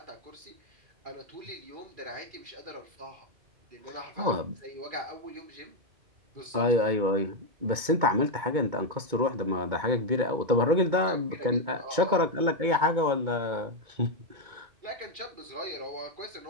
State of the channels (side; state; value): left; late; 2.2 ms